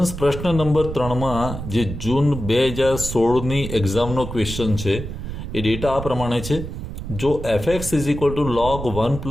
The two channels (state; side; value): noise; right; rumble, 8 dB below the sound